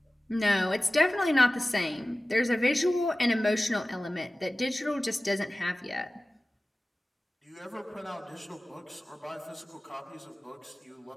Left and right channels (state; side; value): normal; both; correlation 0.96